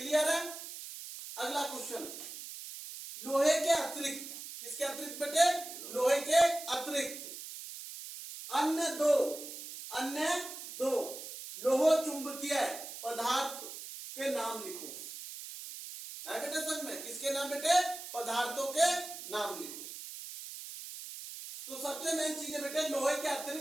है? अगला क्वेश्चन, लोहे के अतिरिक्त, किसके अतिरिक्त बेटे? लोहे के अतिरिक्त अन्य दो लोह चुंबकीय पदार्थ के नाम लिखो। ना बेटे समझ में? किसके नाम बेटे? पदार्थों के नाम लिखो। तो सबसे मेन चीज है बेटे लोहे के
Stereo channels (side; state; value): right; noise; hiss, 10 dB below the sound